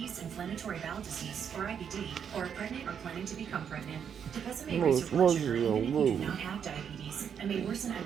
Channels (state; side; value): quieter; left; 7.8 dB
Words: inflammatory bowel disease, or IBD, or are pregnant or planning to become pregnant. Tepezza may raise your blood sugar even if you do not have diabetes, and may worsen